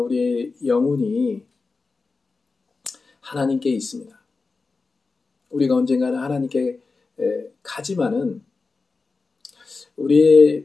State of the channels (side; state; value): right; quieter; 4.1 dB